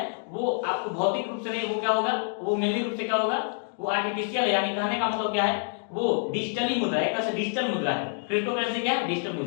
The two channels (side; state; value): right; silent; 60 dB below the other